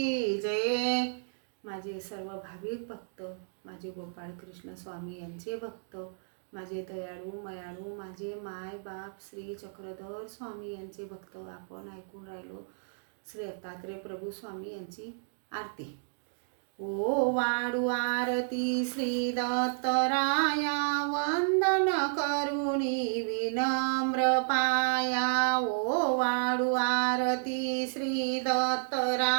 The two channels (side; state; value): left; silent; digital silence